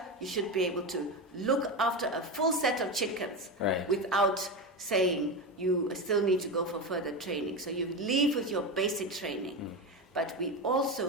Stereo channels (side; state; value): both; normal; correlation 0.18